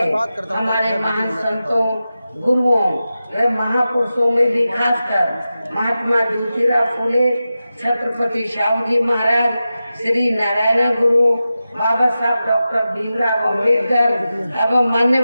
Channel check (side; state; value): both; inverted; correlation -0.93